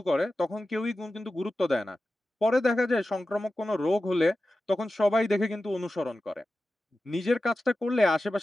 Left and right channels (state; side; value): normal; both; correlation 0.94